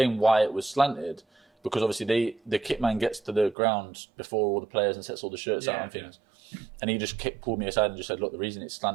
why it was slanted. Because obviously the kit man gets to the ground before all the players and sets all the shirts out and things. And he just pulled me aside and just said, "Look, the reason it's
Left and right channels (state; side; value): drops out; left; at 3.6 s